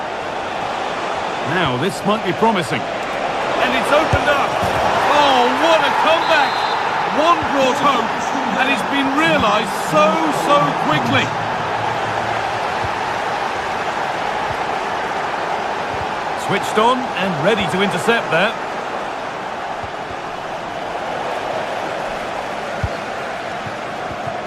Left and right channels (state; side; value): identical; both; correlation 1.00